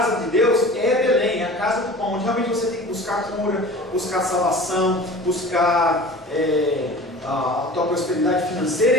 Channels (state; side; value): normal; both; correlation 0.40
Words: de Deus é Belém, é a casa do pão, onde realmente você tem que buscar cura, buscar salvação, buscar a tua prosperidade financeira